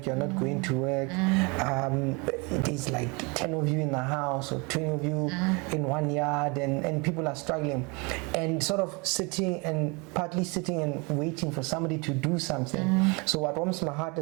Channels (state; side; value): quieter; left; 29.4 dB